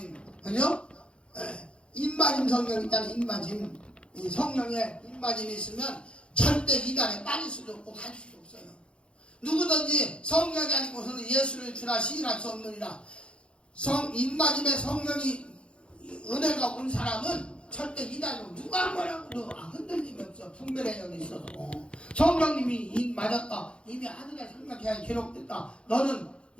그죠? 입맞음 성령 있잖아요. 입맞음 이 성령의 입맞음이 있으면 절대 이단에 빠질 수도 없고 갈 수도 없어요. 누구든지 성령이 아니고서는 예수를 주라 시인할 수 없느니라. 입맞음의 성령이 은혜가 온 사람은 절대 이단으로 누가 뭐라고 흔들림이 없어. 분별의 영이 있어서 성령님이 입 맞았다. 이미 아들의 생명계약이 기록됐다. 너는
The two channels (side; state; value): right; late; 0.057 ms